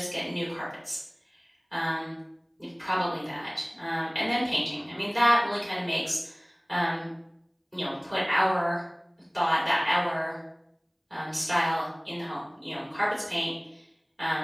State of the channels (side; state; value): both; identical; correlation 1.00